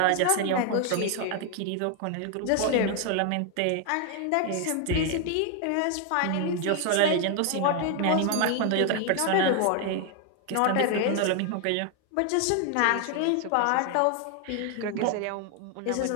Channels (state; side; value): different; both; correlation 0.00